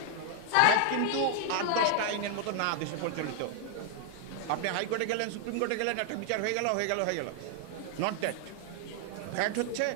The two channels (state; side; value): different; both; correlation 0.00